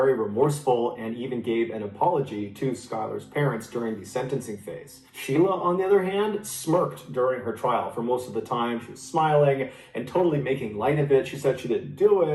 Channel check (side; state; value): both; identical; correlation 1.00